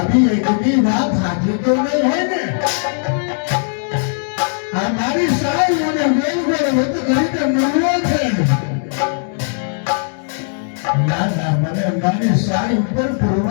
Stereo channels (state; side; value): silent; right; 68 dB below the other